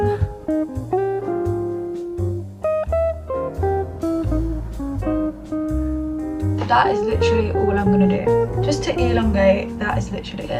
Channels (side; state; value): both; identical; correlation 1.00